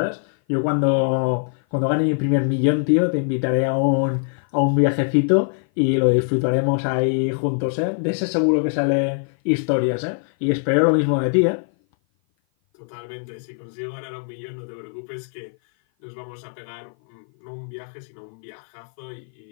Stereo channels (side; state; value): right; silent; 56 dB below the other